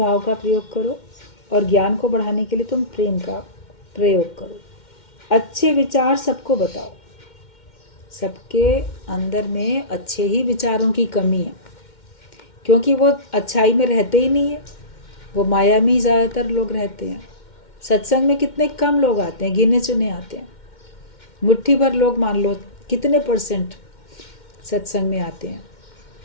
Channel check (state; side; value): late; right; 2.1 ms